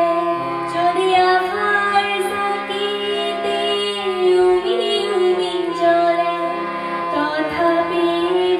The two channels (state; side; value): identical; both; correlation 1.00